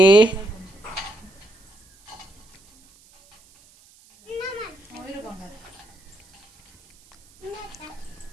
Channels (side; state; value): right; noise; hiss, 28 dB below the sound